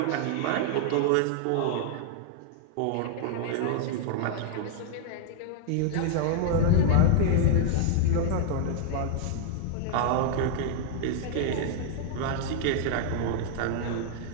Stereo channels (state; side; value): different; both; correlation -0.01